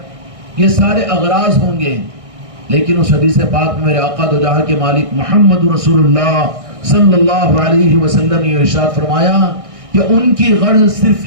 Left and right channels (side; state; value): left; late; 1.6 ms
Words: یہ سارے اغراض ہوں گے، لیکن اس حدیث پاک میں میرے آقا دو جہاں کے مالک محمد رسول اللہ صلی اللہ علیہ وسلم نے ارشاد فرمایا کہ ان کی غرض صرف